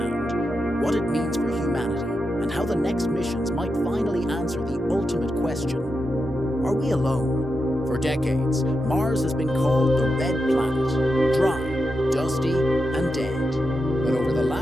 what it means for humanity, and how the next missions might finally answer the ultimate question: are we alone? For decades, Mars has been called the Red Planet, dry, dusty, and dead. But over the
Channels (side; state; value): both; normal; correlation 0.87